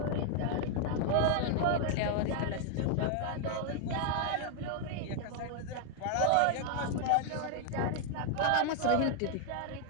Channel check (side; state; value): both; different; correlation 0.00